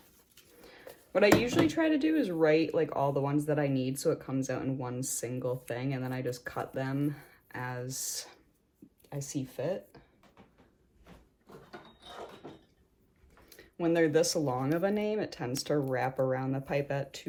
What I usually try to do is write like all the ones that I need so it comes out in one single thing, and then I just cut them as I see fit. When they're this long of a name, it tends to wrap around the pipette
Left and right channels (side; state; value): both; identical; correlation 1.00